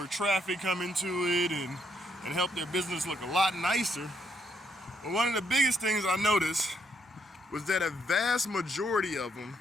traffic come into it, and help their business look a lot nicer. But one of the biggest things I noticed was that a vast majority of them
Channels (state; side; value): normal; both; correlation 0.74